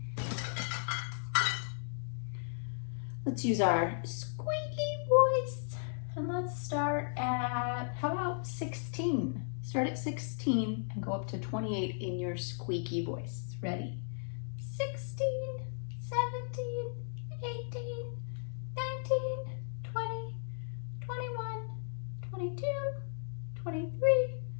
Let's use our squeaky voice, and let's start at, how about 16? Start at 16 and go up to 28 in your squeaky voice. Ready? 16, 17, 18, 19, 20, 21, 22, 23,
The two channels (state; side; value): silent; right; digital silence